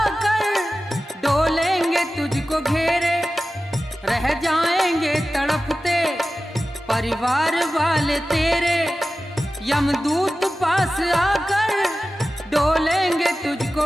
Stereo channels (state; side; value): normal; both; correlation 0.95